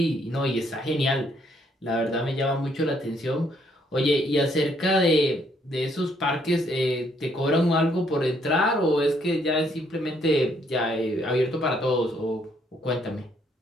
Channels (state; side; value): normal; both; correlation 0.69